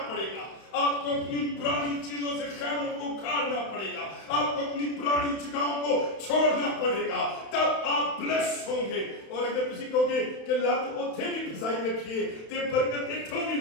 पड़ेगा, आपको अपनी पुरानी चीजों से खैमों को उखाड़ना पड़ेगा, आपको अपनी पुरानी जगहों को छोड़ना पड़ेगा, तब आप ब्लेस होंगे। और अगर किसी कहोगे कि लत उथे भी फसाई रखिए ते बरकत इथों भी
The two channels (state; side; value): late; right; 31 ms